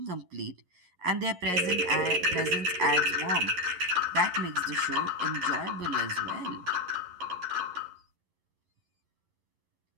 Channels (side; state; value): left; late; 11 ms